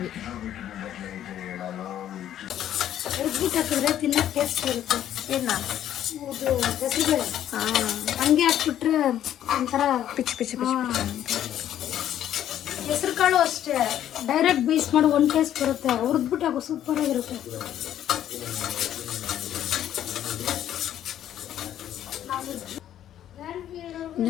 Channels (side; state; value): right; quieter; 11.2 dB